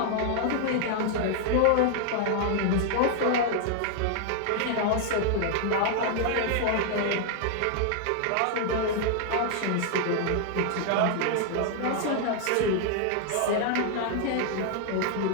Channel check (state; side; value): different; both; correlation -0.01